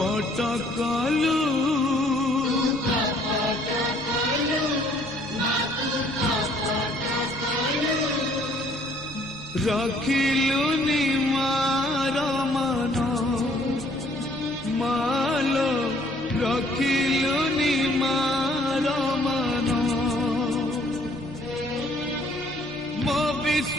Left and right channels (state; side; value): normal; both; correlation 0.61